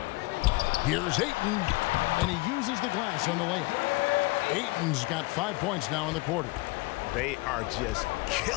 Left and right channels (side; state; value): right; quieter; 24.2 dB